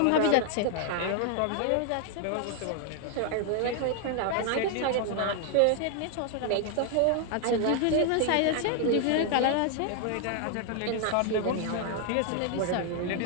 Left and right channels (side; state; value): both; different; correlation 0.00